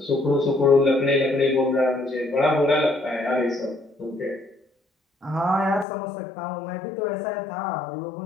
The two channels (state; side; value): drops out; right; at 5.9 s